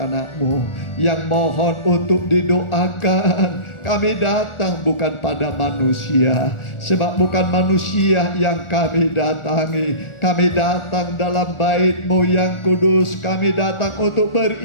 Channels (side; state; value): right; late; 1.4 ms